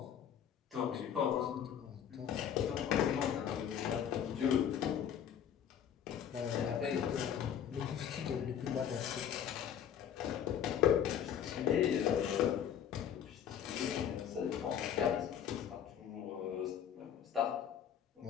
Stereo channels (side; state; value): right; quieter; 9.1 dB